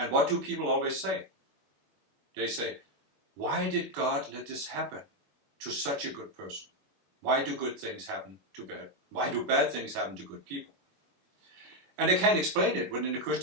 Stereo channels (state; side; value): late; left; 21 ms